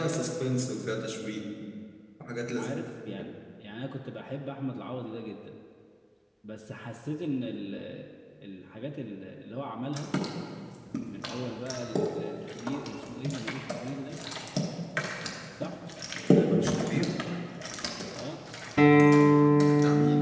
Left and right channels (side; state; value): both; identical; correlation 1.00